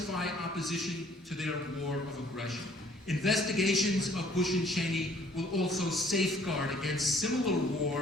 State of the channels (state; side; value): normal; both; correlation 0.59